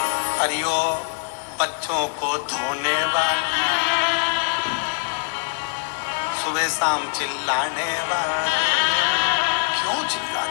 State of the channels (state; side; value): silent; right; digital silence